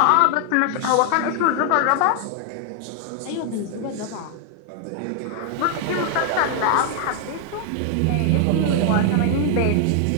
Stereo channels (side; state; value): both; different; correlation 0.00